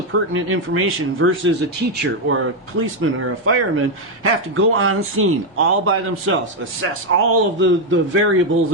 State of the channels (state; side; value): normal; both; correlation 0.03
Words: pertinent information versus a teacher or a policeman or a fireman have to go on scene all by themselves, assess all of the variables